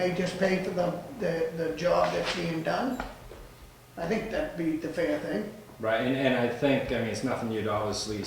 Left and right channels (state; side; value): identical; both; correlation 1.00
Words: just pay for the job that's being done? I think that'd be the fair thing. Right, and I think, I mean, it's nothing you'd obviously